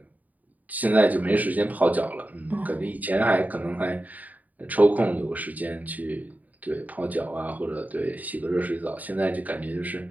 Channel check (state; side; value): late; left; 0.077 ms